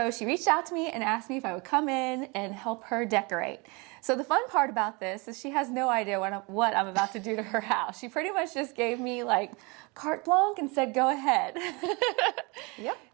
she reached out to me and asked me if I would come in and help her decorate. So the fun part about this is she has no idea what I'm about to do to her house. She pretty much just gave me like carte blanche and said, go ahead.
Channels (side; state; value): left; quieter; 28.4 dB